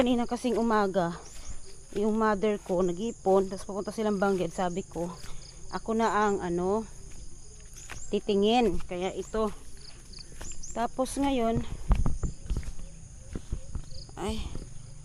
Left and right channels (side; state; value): both; identical; correlation 1.00